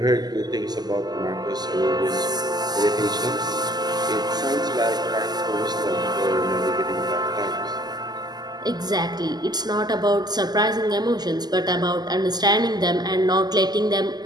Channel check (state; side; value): late; left; 0.20 ms